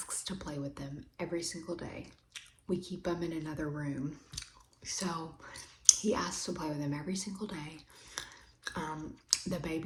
to play with them every single day. We keep them in another room. So he asks to play with them every single day. The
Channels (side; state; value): both; identical; correlation 1.00